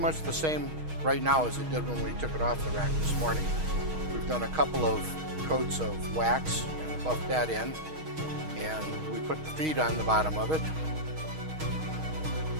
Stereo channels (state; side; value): late; left; 6.4 ms